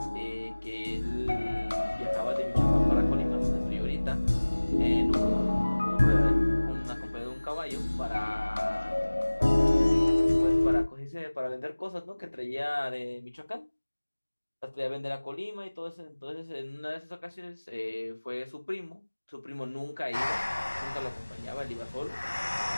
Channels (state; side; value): inverted; both; correlation -1.00